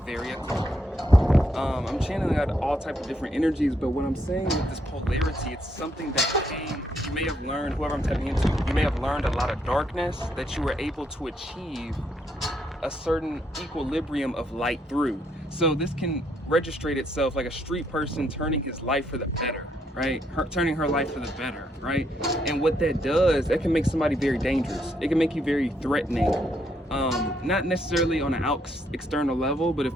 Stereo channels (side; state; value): both; normal; correlation 0.74